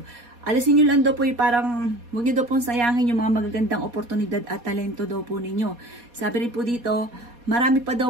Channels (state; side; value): late; left; 4.2 ms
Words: Alisin nyo lang daw po yung parang, huwag nyo daw pong sayangin yung mga magagandang oportunidad at talento daw po ninyo. Sabi rin po dito, marami pa